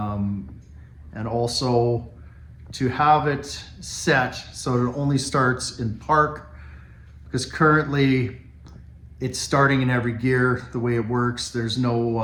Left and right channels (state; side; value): identical; both; correlation 1.00